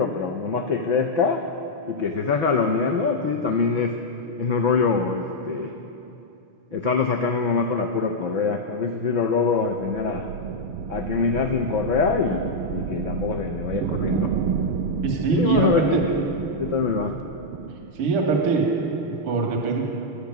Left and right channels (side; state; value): left; late; 6.9 ms